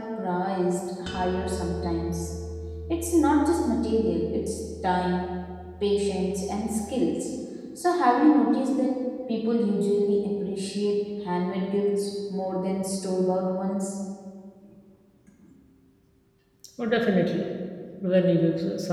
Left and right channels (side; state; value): both; identical; correlation 1.00